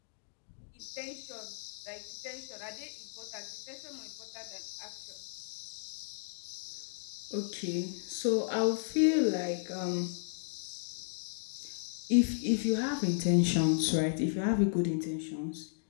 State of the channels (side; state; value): right; silent; digital silence